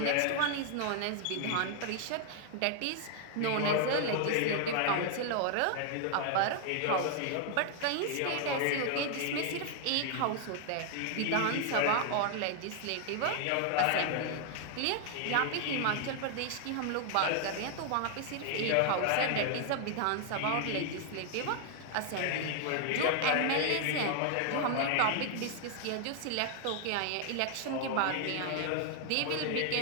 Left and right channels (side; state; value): both; different; correlation 0.00